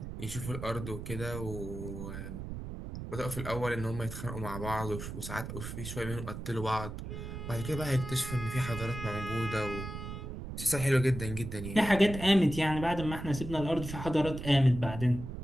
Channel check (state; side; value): noise; right; rumble, 8 dB below the sound